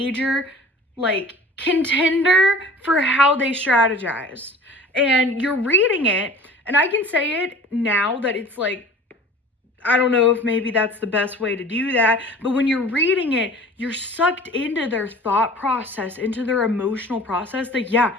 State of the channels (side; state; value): both; normal; correlation 0.43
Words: like, contender for how they strategized. And you're reading it, and I can say it now that it's like, I don't know if maybe that's the best way to do that, but when you're reading it, you're sucked into their thought process, into their emotional process, that yeah,